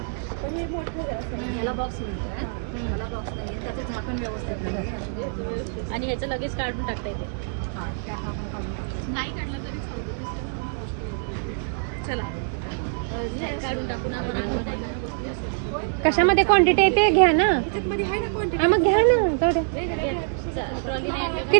याला बॉक्स मिळतो, याला बॉक्स नाही त्याचं झाकण व्यवस्थित नाही आणि ह्याचं लगेच काढून टाकता येते. नाही काढलं तरी चला काढून टाकून. कशामध्ये क्वांटिटी आहे ते घ्या ना. हा मग घ्या ना.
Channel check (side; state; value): left; silent; digital silence